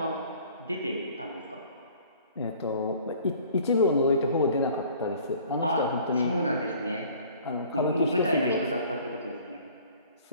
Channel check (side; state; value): both; inverted; correlation -0.52